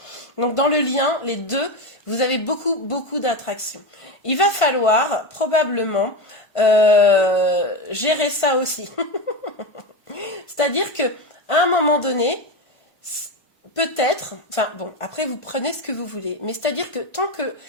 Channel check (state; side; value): late; right; 1.5 ms